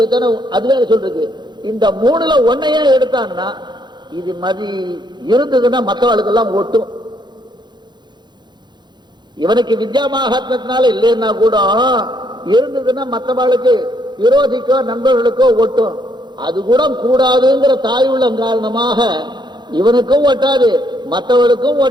எதன, அதுவே சொல்றது. இந்த 3ல ஒன்னையே எடுத்தான்னா இது மதி இருந்ததுன்னா மற்றவர்களுக்கெல்லாம் ஒட்டும். இவனுக்கு வித்யா மகாத்மத்தினால இல்லைன்னா கூட இருந்ததுன்னா மற்றவர்களுக்கு விரோதிக்கோ நண்பர்களுக்கோ ஒட்டும். அது கூட கூடாதுங்கிற தாயுள்ளம் காரணமாக இவனுக்கும் ஒட்டாது மற்றவர்களுக்கும்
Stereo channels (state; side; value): late; left; 0.21 ms